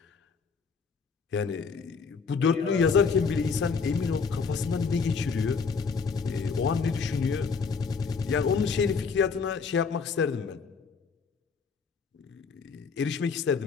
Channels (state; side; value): quieter; right; 5.3 dB